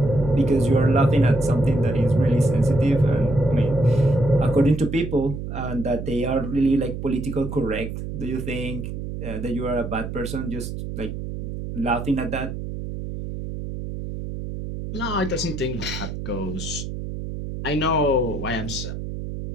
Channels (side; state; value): right; noise; hum, 7 dB below the sound